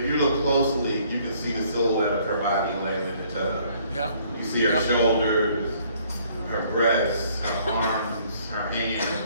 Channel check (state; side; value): inverted; both; correlation -0.62